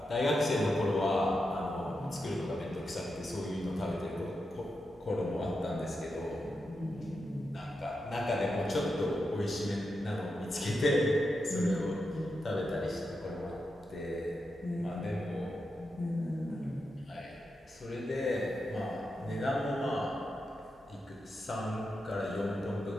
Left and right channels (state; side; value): normal; both; correlation 0.87